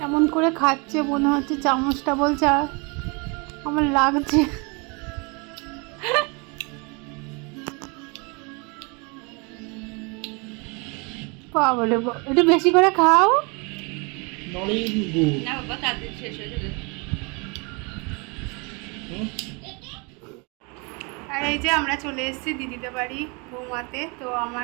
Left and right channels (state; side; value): quieter; left; 31.0 dB